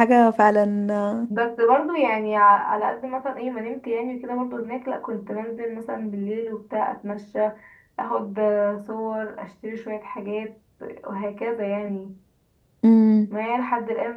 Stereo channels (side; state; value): both; identical; correlation 1.00